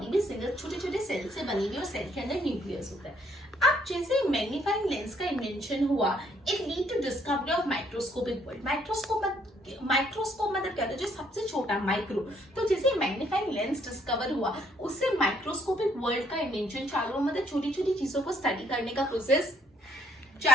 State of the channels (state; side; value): normal; both; correlation 0.67